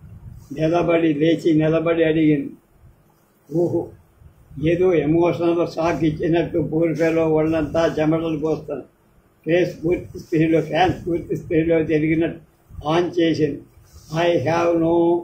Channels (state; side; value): identical; both; correlation 1.00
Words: లేచి నిలబడి అడిగింది. ఊహు, ఏదో ఎమోషనల్ షాక్ ఇచ్చినట్టు పూర్తిలో ఒళ్ళంతా చెమటలు పోస్తాను. ఫ్యాన్స్ పూర్తి స్పీడ్లో తిరిగినట్టు ఆన్ చేసింది. I have no